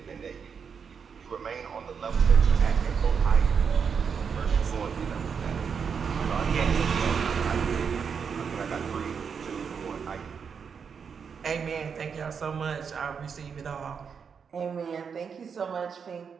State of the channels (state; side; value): quieter; left; 6.4 dB